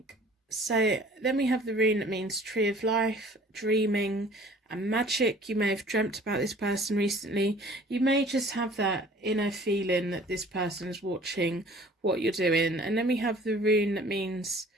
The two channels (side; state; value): both; normal; correlation 0.50